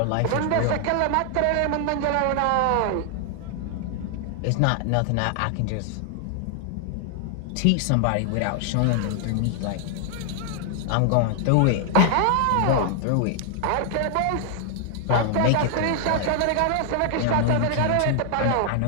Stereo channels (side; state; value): both; different; correlation 0.00